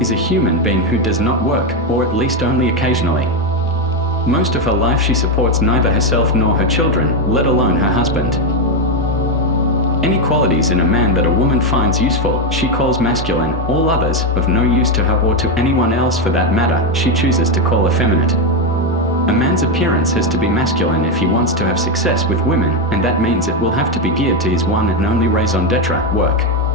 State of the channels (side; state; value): both; normal; correlation 0.08